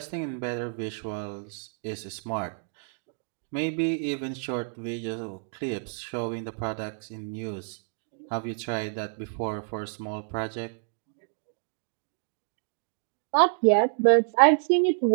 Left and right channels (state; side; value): silent; left; digital silence